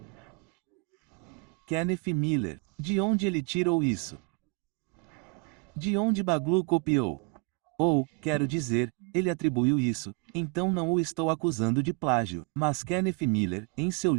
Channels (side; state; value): left; quieter; 31.3 dB